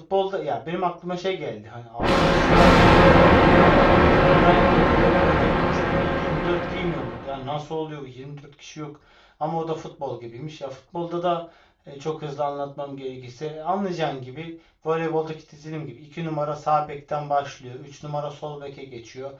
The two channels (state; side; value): identical; both; correlation 1.00